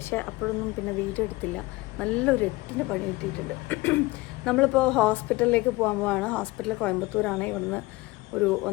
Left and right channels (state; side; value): quieter; right; 21.6 dB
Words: അപ്പോഴൊന്നും പിന്നെ വീഡിയോ എടുത്തില്ല. നല്ലൊരു 8-ന് പണി കിട്ടിയിട്ടുണ്ട്. നമ്മളിപ്പോൾ ഹോസ്പിറ്റലിലേക്ക് പോകാൻ പോവാണ്. ഹോസ്പിറ്റൽ കോയമ്പത്തൂരാണ്. ഇവിടുന്ന് ഒരു